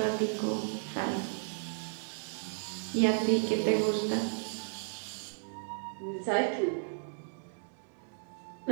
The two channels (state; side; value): silent; left; digital silence